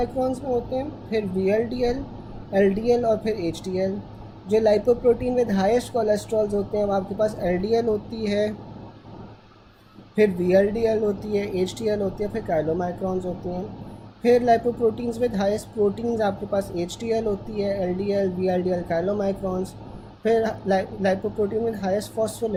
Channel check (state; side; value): identical; both; correlation 1.00